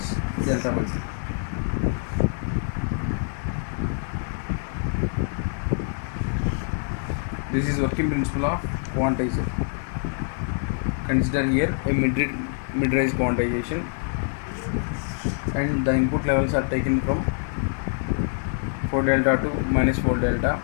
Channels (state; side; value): silent; right; 62 dB below the other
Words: delta by 2. This is working principle of quantizer. Consider here a mid-range quantization, and the input levels are taken from 4 delta to minus 4 delta,